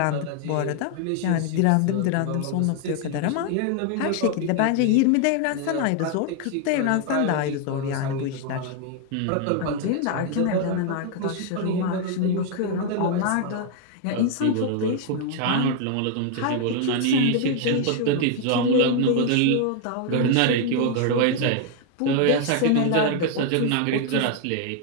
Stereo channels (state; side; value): different; both; correlation 0.00